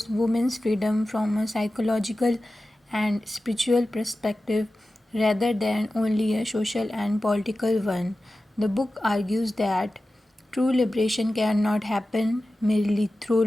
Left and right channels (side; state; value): both; normal; correlation 0.95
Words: women's freedom from a psychological and spiritual perspective rather than only a social and political one. The book argues that true liberation cannot happen merely through